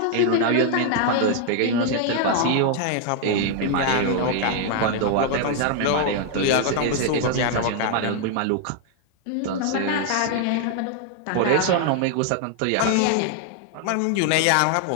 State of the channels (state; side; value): different; both; correlation 0.00